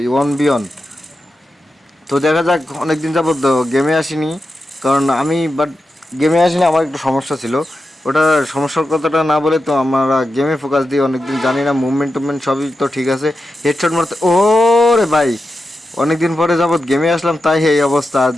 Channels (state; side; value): normal; both; correlation 0.90